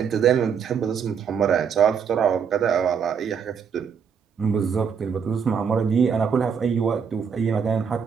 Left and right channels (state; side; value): quieter; left; 6.8 dB